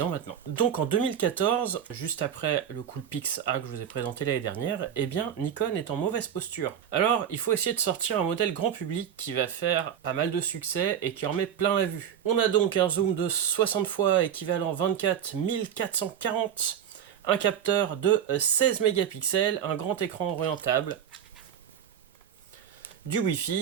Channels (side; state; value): left; quieter; 9.1 dB